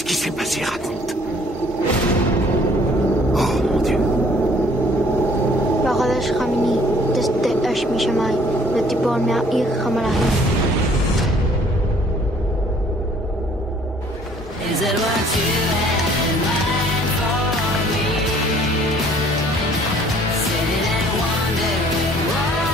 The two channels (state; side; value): normal; both; correlation 0.58